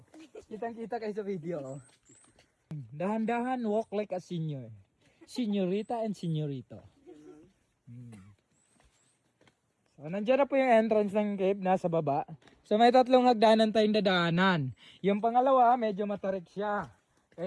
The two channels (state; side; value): identical; both; correlation 1.00